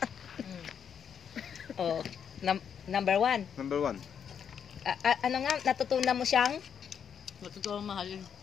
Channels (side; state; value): right; quieter; 7.8 dB